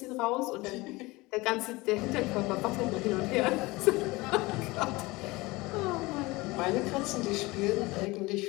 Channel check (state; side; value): quieter; right; 22.2 dB